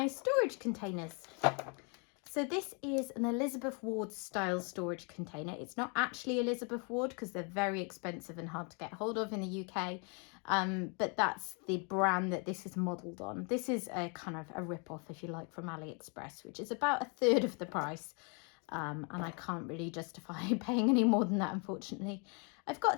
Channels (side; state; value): right; quieter; 35.6 dB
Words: storage containers. So this is an Elizabeth Ward style storage container. It's not actually Elizabeth Ward because they're very expensive and hard to get hold of in the UK. But that's the brand that this is modelled on. This is a kind of a rip-off, if you like, from AliExpress, which is about a third of the price. And I can't really justify paying any more than that, unfortunately. I've